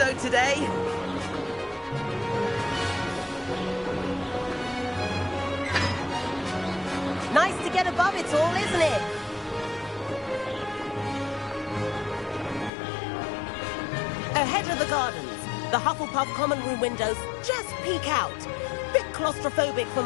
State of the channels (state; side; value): drops out; right; at 12.7 s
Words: today. Nice to get above it all, isn't it? Ahead of the gardens, the Hufflepuff common room windows just peek out. Bit claustrophobic for